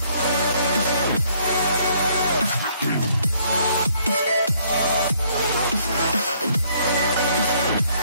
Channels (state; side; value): inverted; both; correlation -0.65